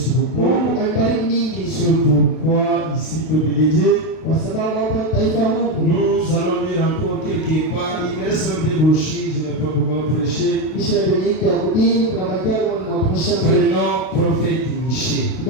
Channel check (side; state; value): right; late; 32 ms